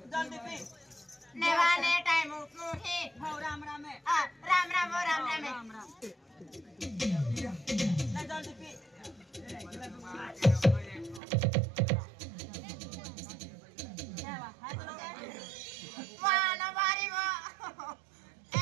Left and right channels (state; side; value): drops out; left; at 11.2 s